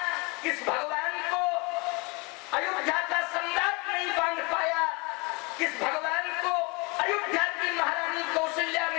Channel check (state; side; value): quieter; right; 28.5 dB